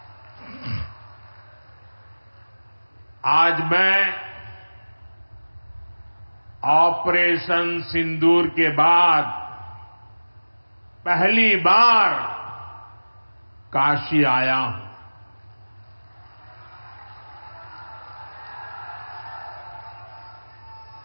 आज मैं ऑपरेशन सिंदूर के बाद पहली बार काशी आया हूं।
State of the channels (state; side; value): inverted; both; correlation -1.00